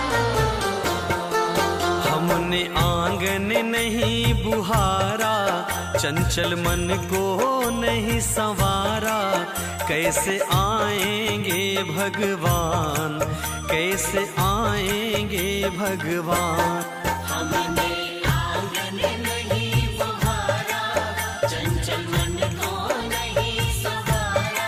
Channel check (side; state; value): both; identical; correlation 1.00